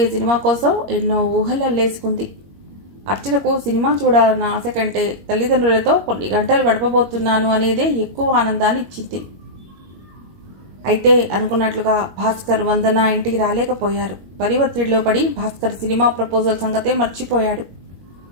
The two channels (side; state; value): left; late; 21 ms